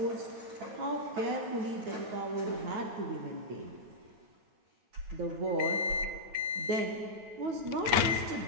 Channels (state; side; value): late; left; 9.2 ms